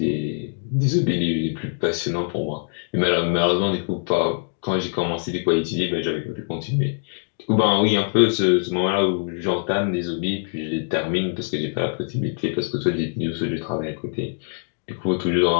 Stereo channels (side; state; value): right; silent; 63 dB below the other